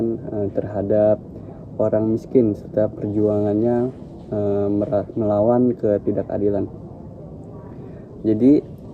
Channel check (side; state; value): both; identical; correlation 1.00